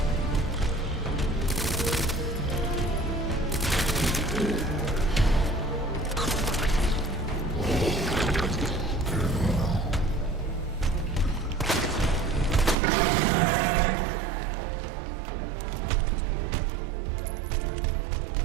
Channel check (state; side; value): drops out; left; at 12.8 s